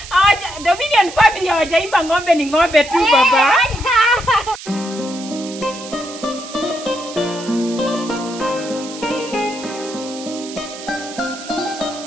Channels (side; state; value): right; noise; hiss, 13 dB below the sound